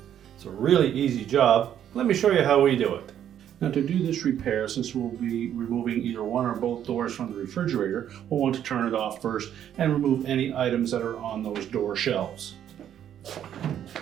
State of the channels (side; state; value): left; quieter; 10.1 dB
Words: It's a really easy job. Let me show you how we do it. Now, to do this repair, since we'll be removing either one or both doors from the refrigerator, we'll want to turn it off first and remove any items that are on those door shelves.